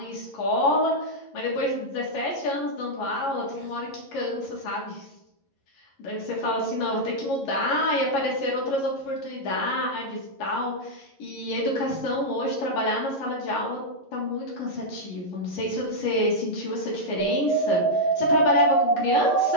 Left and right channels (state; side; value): late; right; 11 ms